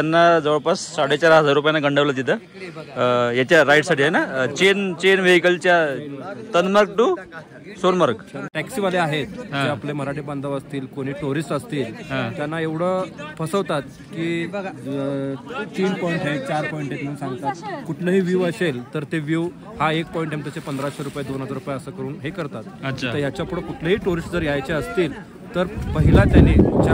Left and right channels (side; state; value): both; identical; correlation 1.00